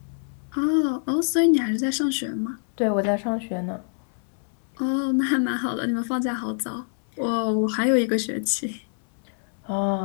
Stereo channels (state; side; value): silent; right; 62 dB below the other